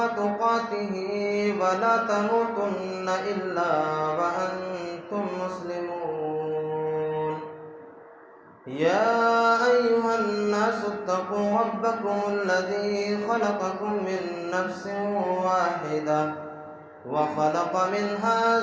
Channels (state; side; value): identical; both; correlation 1.00